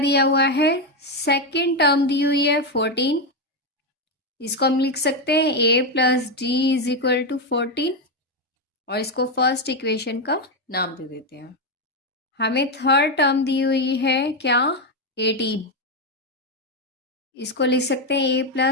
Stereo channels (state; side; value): normal; both; correlation 0.07